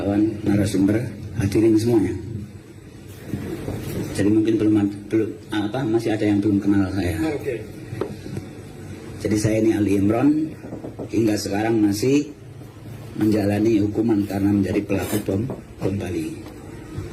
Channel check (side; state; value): both; identical; correlation 1.00